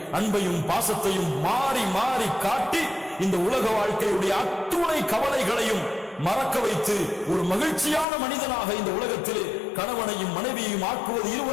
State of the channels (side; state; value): right; drops out; at 8.1 s